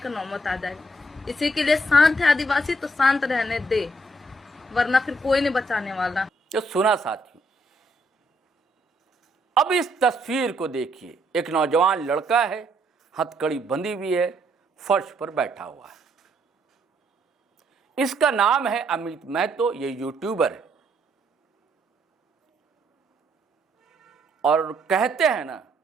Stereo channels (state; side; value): normal; both; correlation 0.72